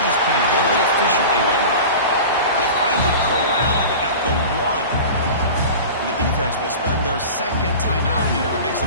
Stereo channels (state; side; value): inverted; both; correlation -0.34